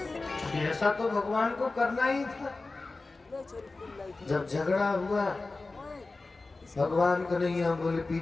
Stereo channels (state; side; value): quieter; right; 3.5 dB